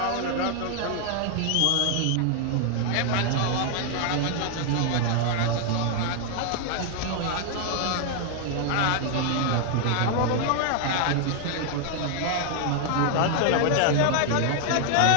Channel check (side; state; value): both; different; correlation 0.00